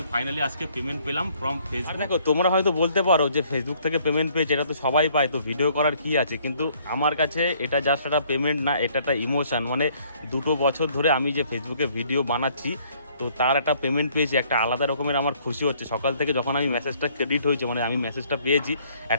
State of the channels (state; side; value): inverted; both; correlation -0.62